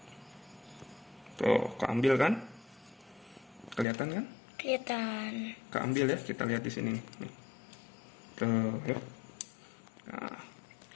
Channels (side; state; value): right; drops out; at 3.9 s